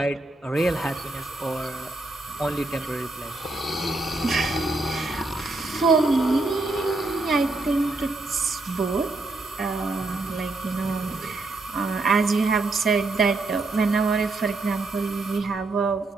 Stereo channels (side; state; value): left; quieter; 3.2 dB